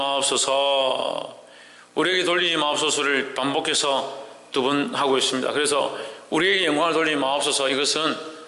우리에게 돌리지 마옵소서를 반복해서 두 번 하고 있습니다. 그래서 우리에게 영광을 돌리지 마옵소서, 이것은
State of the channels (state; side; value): identical; both; correlation 1.00